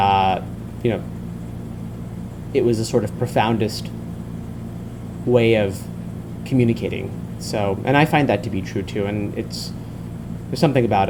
it was the sort of profoundest way of communicating. So, and I find that to be true too, and there's something about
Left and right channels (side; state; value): both; identical; correlation 1.00